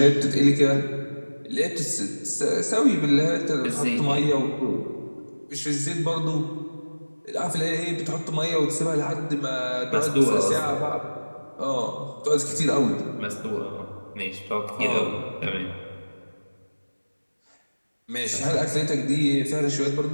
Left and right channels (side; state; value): both; inverted; correlation -1.00